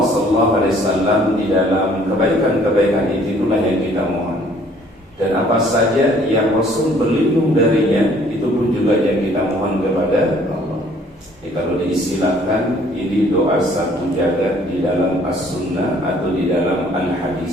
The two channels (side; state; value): both; normal; correlation 0.59